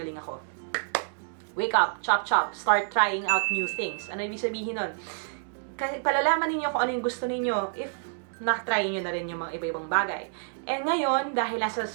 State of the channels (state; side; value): silent; left; digital silence